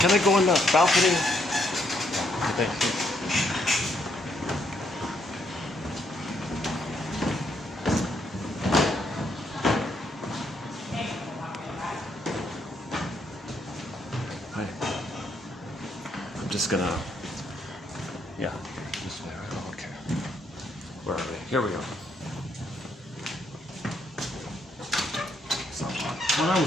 Can I go in the balcony? Thank you. Hi. I'm just gonna, yeah, this way. Oh, okay. Where are we? Here we go. It's not hot. When I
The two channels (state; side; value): normal; both; correlation 0.74